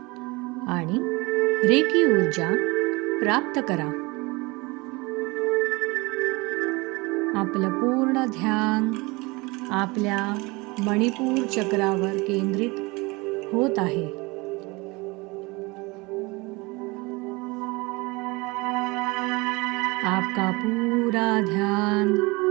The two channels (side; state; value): left; quieter; 24.8 dB